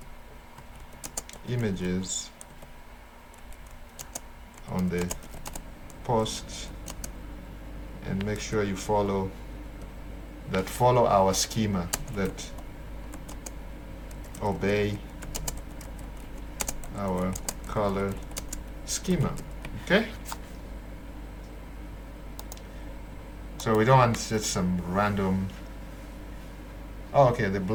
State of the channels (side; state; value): both; identical; correlation 1.00